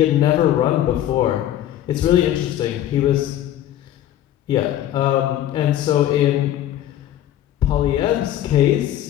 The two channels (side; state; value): right; quieter; 12.2 dB